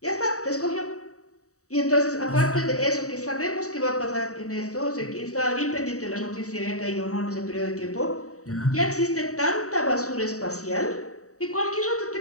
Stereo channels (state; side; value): late; right; 0.65 ms